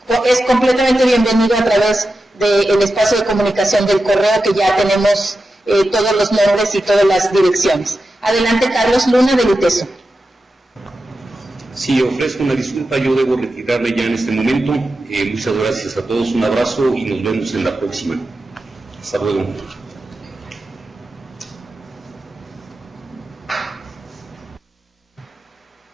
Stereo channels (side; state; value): both; normal; correlation 0.91